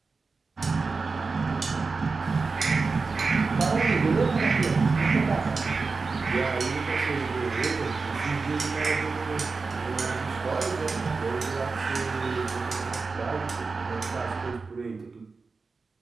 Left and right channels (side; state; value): left; quieter; 4.3 dB